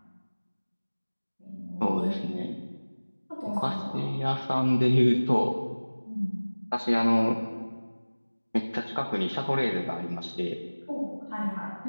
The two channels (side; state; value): both; inverted; correlation -1.00